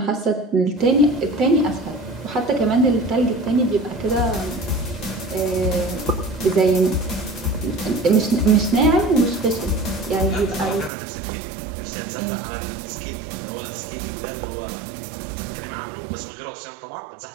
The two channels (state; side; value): drops out; left; at 10.9 s